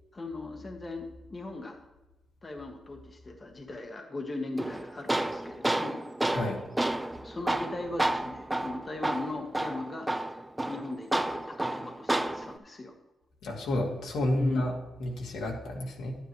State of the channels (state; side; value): normal; both; correlation 0.93